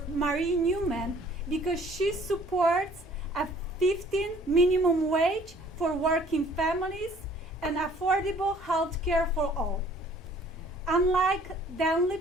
Marie Newman because she supports a 15 minimum wage for working families and affordable health care for all. Unlike Dan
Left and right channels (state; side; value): normal; both; correlation 0.56